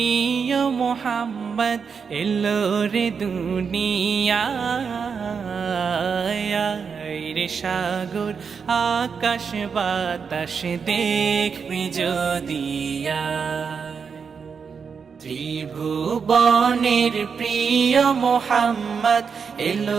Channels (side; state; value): left; quieter; 6.0 dB